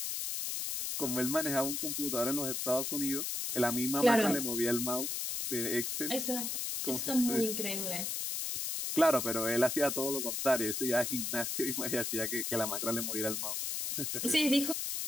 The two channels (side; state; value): left; noise; hiss, 2 dB below the sound